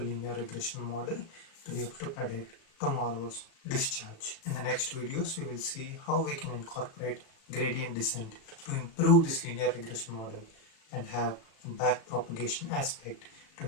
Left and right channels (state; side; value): late; right; 36 ms